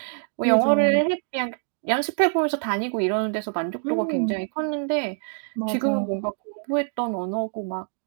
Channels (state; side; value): silent; left; digital silence